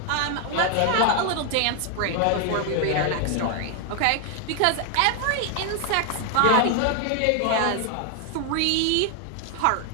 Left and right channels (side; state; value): both; different; correlation 0.01